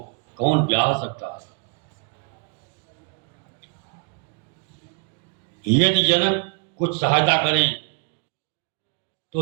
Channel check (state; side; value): quieter; left; 36.9 dB